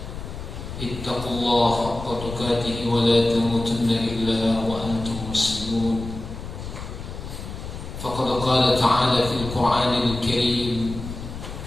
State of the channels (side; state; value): left; noise; rumble, 9 dB below the sound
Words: اتقوا الله حق تقاته ولا تموتن إلا وأنتم مسلمون. فقد قال تعالى في القرآن الكريم: